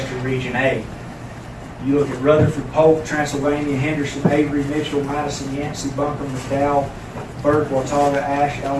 region A, you look at Rutherford, Polk, Transylvania, Henderson, Avery, Mitchell, Madison, Yancey, Buncombe, McDowell, Burke, Watauga, Ashe,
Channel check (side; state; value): both; identical; correlation 1.00